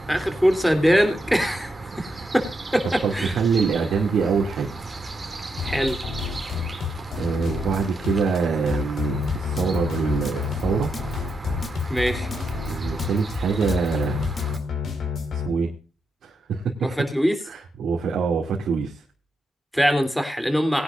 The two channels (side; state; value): both; normal; correlation 0.83